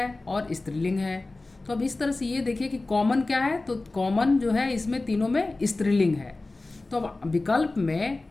और स्त्रीलिंग है। तो अब इस तरह से ये देखिए कि कॉमन क्या है, तो कॉमन जो है इसमें तीनों में स्त्रीलिंग है। तो अब विकल्प में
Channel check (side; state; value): right; quieter; 3.2 dB